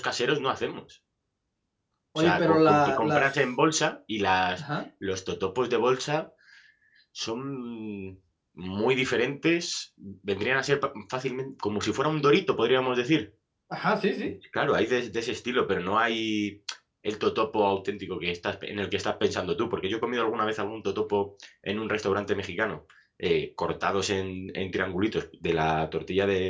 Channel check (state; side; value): identical; both; correlation 1.00